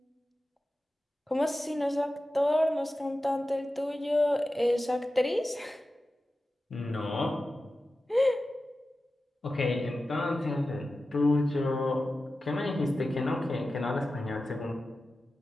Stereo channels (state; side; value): normal; both; correlation 0.94